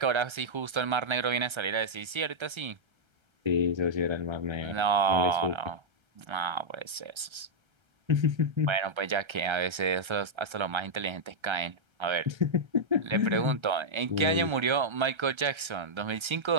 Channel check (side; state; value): left; late; 1.3 ms